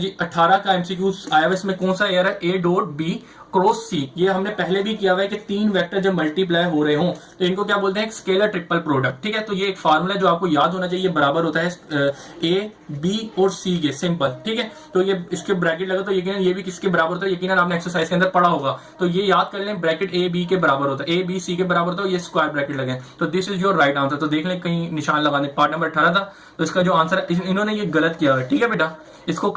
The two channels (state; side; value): identical; both; correlation 1.00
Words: 18 का एमसीक्यूज आया हुआ, इसमें कौन सा एयर है, A.B क्रॉस सी। ये हमने पहले भी किया हुआ है कि 3 वेक्टर जब मल्टीप्लाई हो रहे हों तो इनको क्या बोलते हैं, स्केलर ट्रिपल प्रोडक्ट, ठीक है। तो ये एक फार्मूला जो आपको याद होना चाहिए, बराबर होता है A, B और C के, सिंपल, ठीक है। तो ये इसके ब्रैकेट लगा तो यकीनन ये भी किसके बराबर होता है, यकीनन आपने एक्सरसाइज के अंदर पढ़ा होगा। तो ये याद कर लें, ब्रैकेट A, B के बराबर होता है, A, B, C के बराबर होता है, ये स्क्वायर ब्रैकेट लगे। तो this is your right answer. तो देख लें कहीं निशान लगा दें, पार्ट नंबर 18 था तो इसका जो आंसर है इन्होंने ये गलत किया हुआ है, ठीक है बेटा, इसको